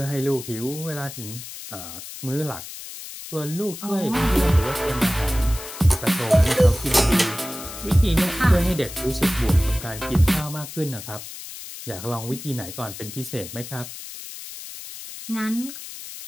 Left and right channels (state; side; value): noise; left; hiss, 12 dB below the sound